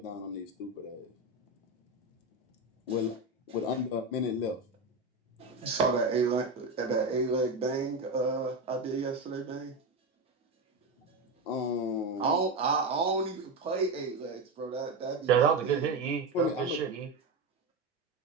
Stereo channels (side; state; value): left; quieter; 3.1 dB